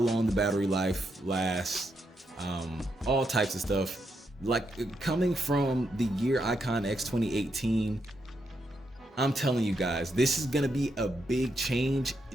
the battery life lasts, all types of stuff. Like, coming from the Gear Icon X 2018, I'm telling you guys, this is gonna be a big change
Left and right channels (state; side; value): normal; both; correlation 0.81